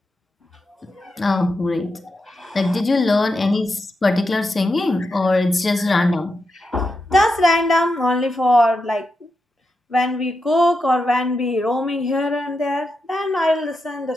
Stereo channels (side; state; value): both; normal; correlation 0.87